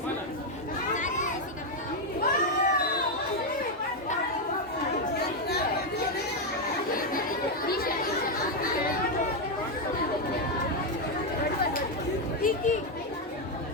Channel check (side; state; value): both; normal; correlation 0.04